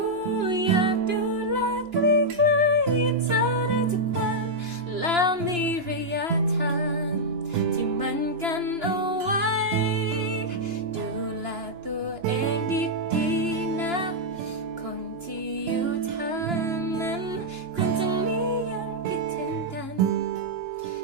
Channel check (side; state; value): left; late; 2.9 ms